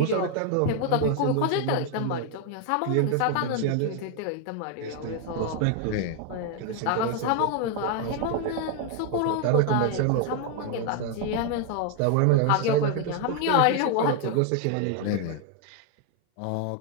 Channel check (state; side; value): different; both; correlation 0.01